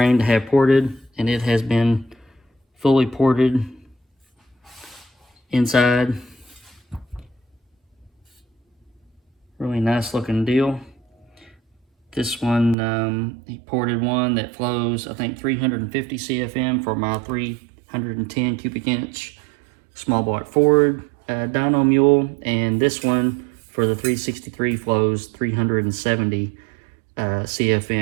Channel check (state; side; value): drops out; left; at 12.8 s